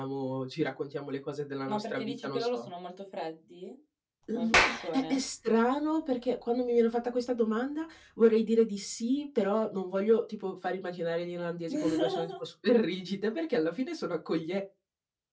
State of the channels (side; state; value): both; identical; correlation 1.00